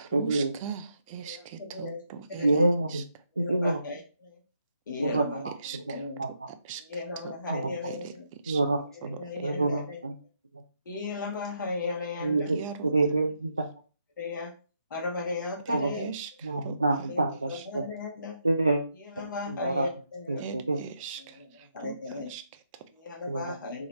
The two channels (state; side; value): inverted; both; correlation -0.79